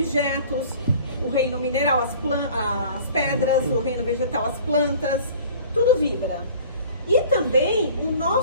o reino mineral, as pedras, o reino vegetal, as plantas, tudo vibra. E também o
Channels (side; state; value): both; inverted; correlation -0.47